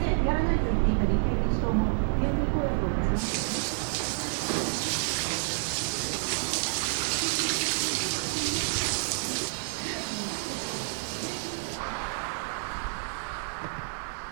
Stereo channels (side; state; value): left; silent; digital silence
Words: やらないと言っていた立憲民主党も、現金公約を出しました。